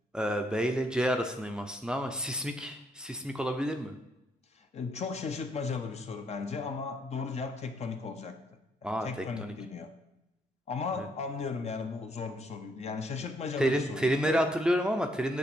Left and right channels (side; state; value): both; normal; correlation 0.72